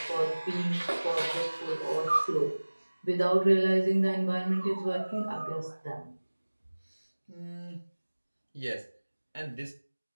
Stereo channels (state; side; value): inverted; both; correlation -1.00